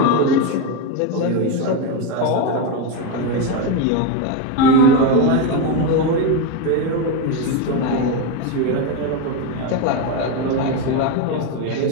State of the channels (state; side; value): different; both; correlation 0.03